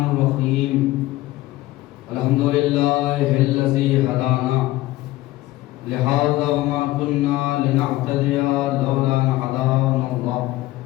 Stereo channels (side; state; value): right; quieter; 17.3 dB